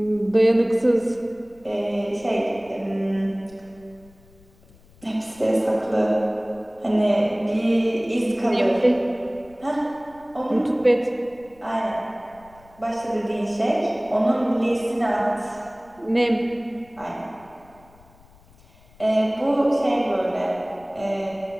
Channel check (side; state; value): left; noise; rumble, 27 dB below the sound